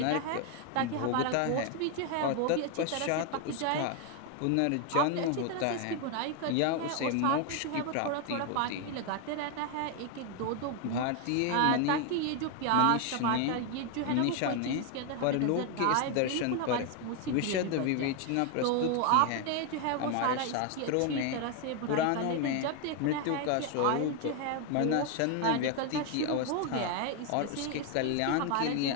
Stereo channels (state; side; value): different; both; correlation 0.01